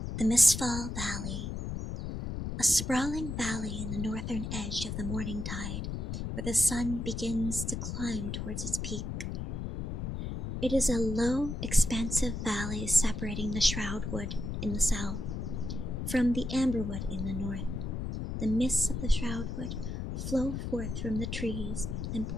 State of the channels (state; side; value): noise; left; rumble, 4 dB below the sound